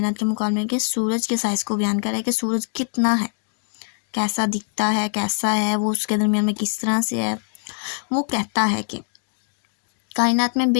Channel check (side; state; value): right; silent; digital silence